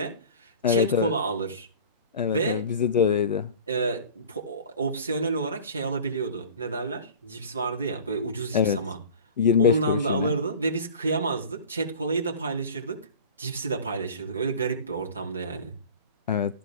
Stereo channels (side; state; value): both; inverted; correlation -0.39